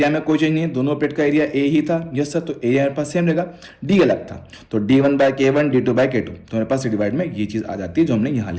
में कोई चेंज नहीं है, दोनों प्लेट का एरिया ए ही था, यस सर, तो एरिया मेरे पास सेम रहेगा, डी अलग था, तो d1 bye k1 d2 bye k2, तो मेरे पास डिवाइड में ये चीज आ जाती है जो हमने यहां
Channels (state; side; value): identical; both; correlation 1.00